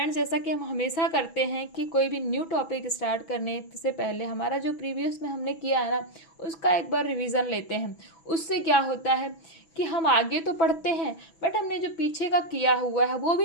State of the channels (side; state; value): right; late; 6.1 ms